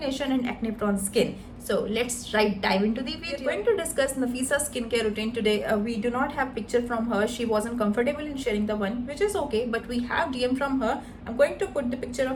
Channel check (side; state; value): both; identical; correlation 1.00